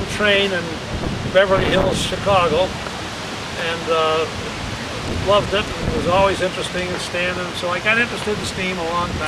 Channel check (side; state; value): both; identical; correlation 1.00